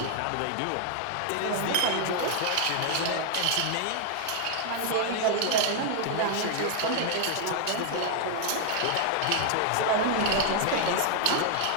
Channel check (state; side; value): different; both; correlation 0.00